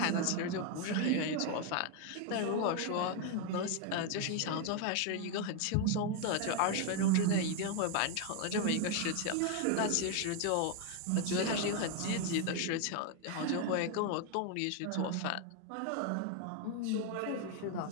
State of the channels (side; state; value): both; different; correlation 0.01